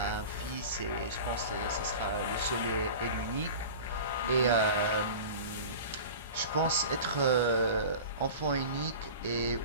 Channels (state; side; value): inverted; both; correlation -0.35